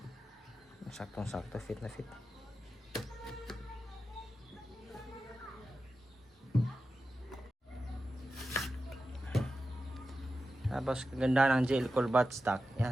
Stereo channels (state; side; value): normal; both; correlation 0.91